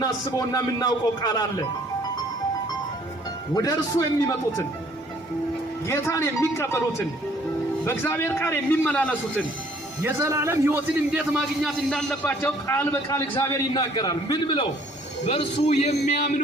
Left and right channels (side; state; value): both; normal; correlation 0.59